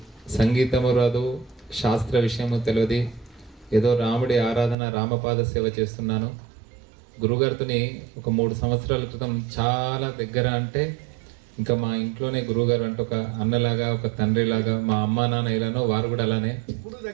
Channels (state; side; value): drops out; left; at 4.8 s